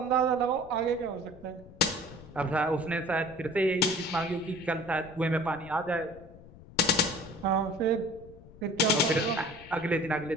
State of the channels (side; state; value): left; noise; rumble, 20 dB below the sound